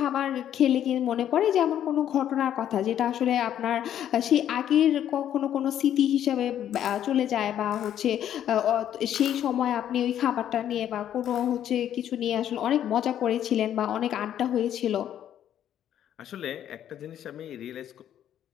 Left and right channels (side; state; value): right; quieter; 10.5 dB